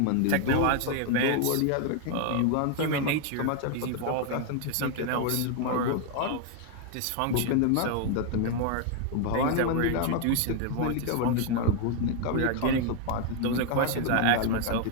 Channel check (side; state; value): both; different; correlation 0.00